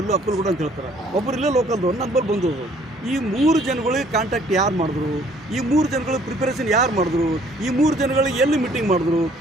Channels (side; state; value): both; normal; correlation 0.59